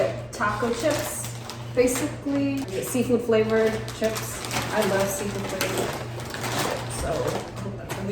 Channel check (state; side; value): identical; both; correlation 1.00